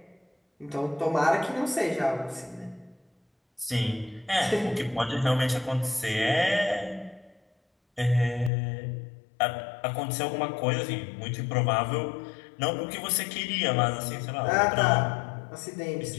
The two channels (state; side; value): drops out; right; at 8.5 s